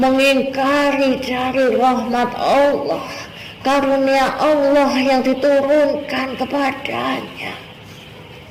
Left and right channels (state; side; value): identical; both; correlation 1.00